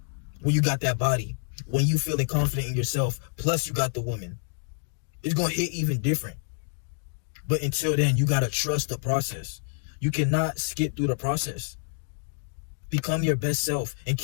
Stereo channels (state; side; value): silent; right; digital silence